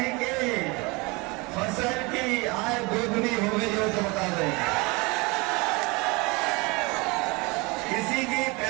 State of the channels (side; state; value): left; quieter; 26.2 dB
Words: के फसल की आय दोगुनी हो गई हो तो बता दें। किसी की